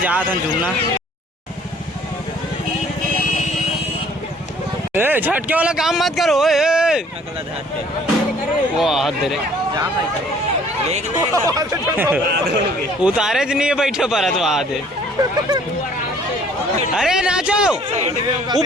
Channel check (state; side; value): normal; both; correlation 0.57